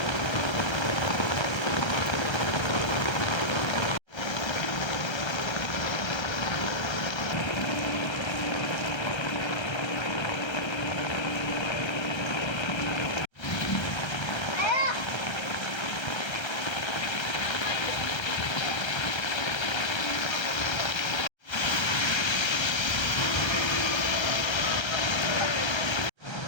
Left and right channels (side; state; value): right; late; 1.3 ms